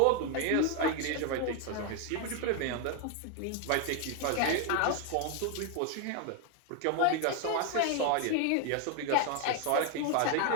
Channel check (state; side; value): different; both; correlation 0.01